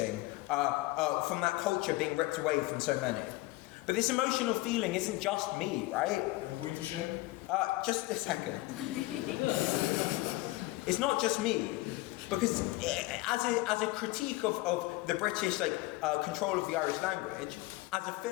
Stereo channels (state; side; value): quieter; right; 20.0 dB